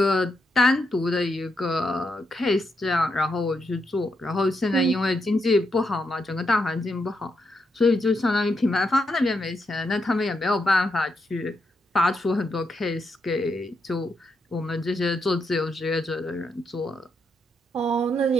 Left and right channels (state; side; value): normal; both; correlation 0.82